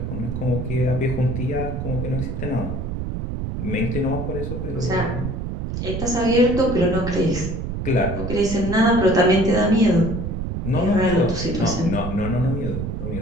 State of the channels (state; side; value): noise; right; rumble, 4 dB below the sound